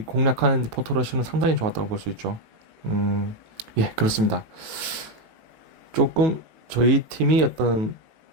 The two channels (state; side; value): late; left; 19 ms